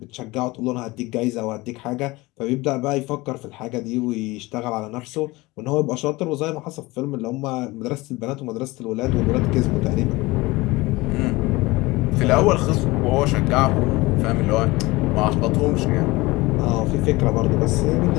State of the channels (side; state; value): right; quieter; 21.5 dB